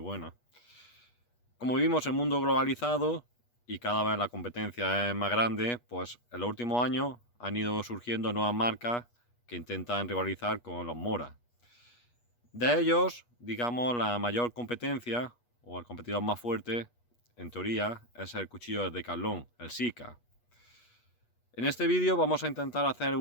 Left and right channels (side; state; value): right; late; 8.3 ms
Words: Como vivimos en un mundo globalizado y cada vez la competencia es más grande, pues en los últimos años han ido surgiendo nuevas marcas que intentan rivalizar con los Mora. De ellos, digamos, la mayor competencia o el competidor más fuerte, en teoría, es el cuchillo de Decathlon, el Sika. En este vídeo vamos a intentar hacer